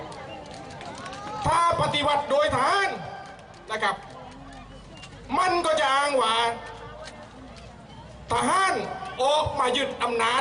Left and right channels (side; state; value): both; identical; correlation 1.00